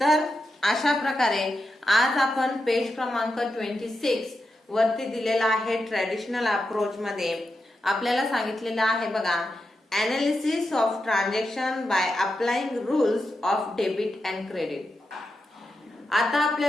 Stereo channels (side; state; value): both; normal; correlation 0.88